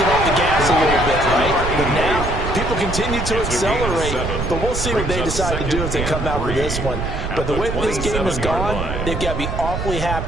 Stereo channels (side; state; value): right; noise; rumble, 4 dB below the sound